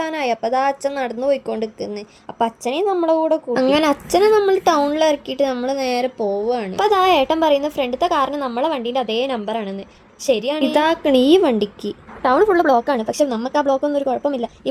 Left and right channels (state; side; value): identical; both; correlation 1.00